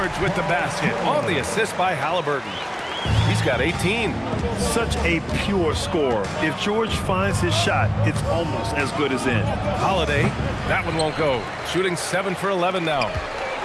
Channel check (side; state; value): both; identical; correlation 1.00